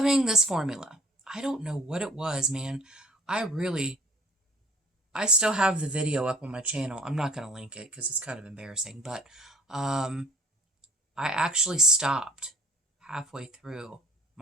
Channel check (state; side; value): normal; both; correlation 0.53